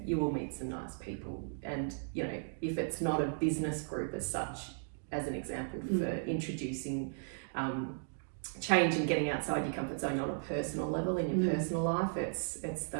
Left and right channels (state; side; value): silent; left; digital silence